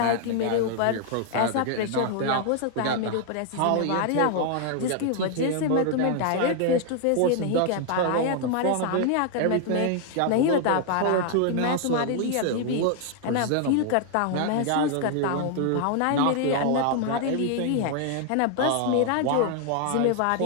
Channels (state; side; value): different; both; correlation 0.00